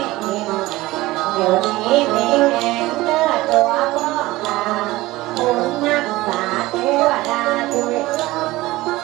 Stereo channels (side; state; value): left; quieter; 18.7 dB